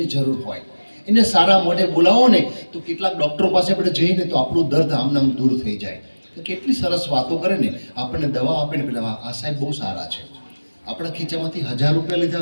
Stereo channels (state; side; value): inverted; both; correlation -1.00